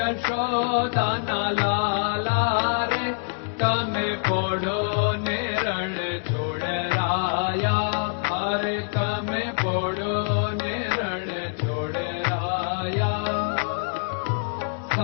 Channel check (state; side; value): silent; right; digital silence